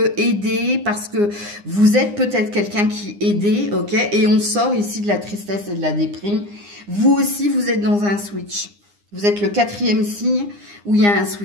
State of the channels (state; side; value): late; left; 9.8 ms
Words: aidé, parce que vous êtes peut-être quelqu'un qui aidé, ok? Et on sort ici de la tristesse et de la déprime. Vous aussi, vous êtes dans un switch. Vous êtes le 4e signe où il y a un